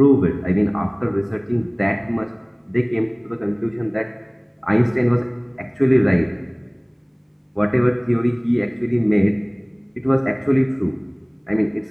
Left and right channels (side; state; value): both; identical; correlation 1.00